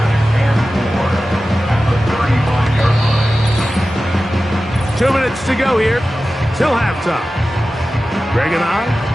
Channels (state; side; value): normal; both; correlation 0.94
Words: Two minutes to go here till halftime. Greg and I